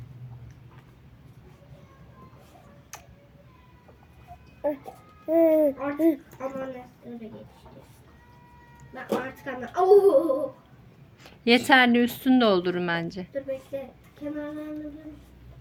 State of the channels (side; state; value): both; identical; correlation 1.00